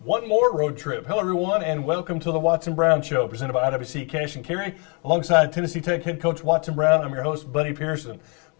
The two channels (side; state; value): right; quieter; 34.2 dB